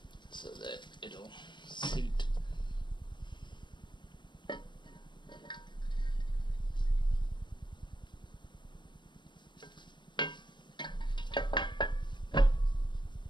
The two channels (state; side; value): late; right; 0.22 ms